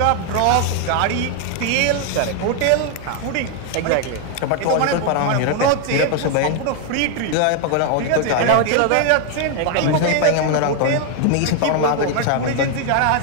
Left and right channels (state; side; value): different; both; correlation 0.00